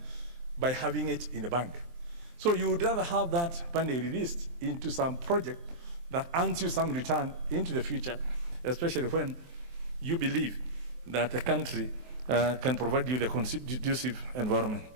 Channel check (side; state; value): left; late; 23 ms